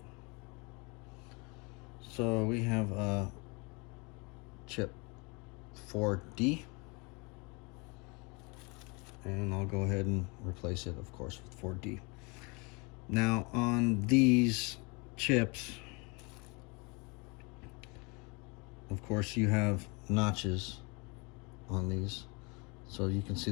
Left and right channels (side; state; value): right; quieter; 29.9 dB